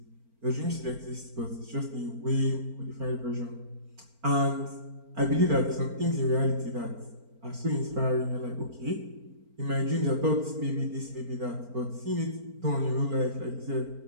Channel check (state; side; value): late; left; 4.4 ms